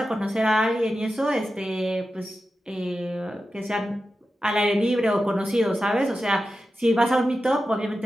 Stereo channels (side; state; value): both; normal; correlation 0.92